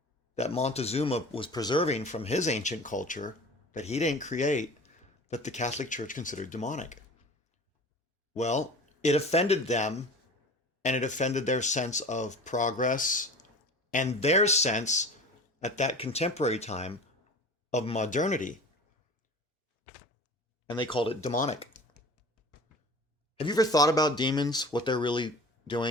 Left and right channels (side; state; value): both; normal; correlation 0.38